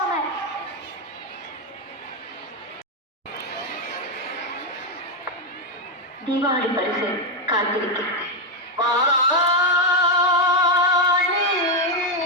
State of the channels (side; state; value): both; normal; correlation 0.05